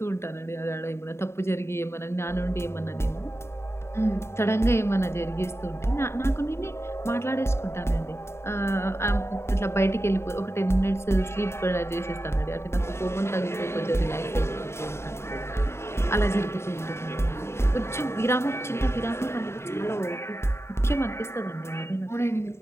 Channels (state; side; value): late; right; 0.13 ms